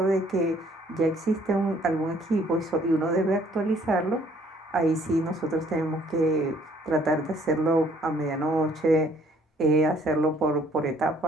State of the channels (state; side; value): normal; both; correlation 0.62